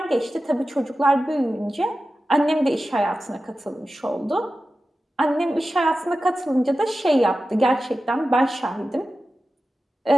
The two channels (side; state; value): both; normal; correlation 0.93